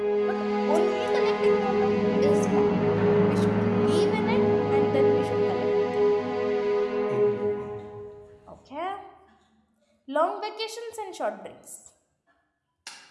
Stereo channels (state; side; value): identical; both; correlation 1.00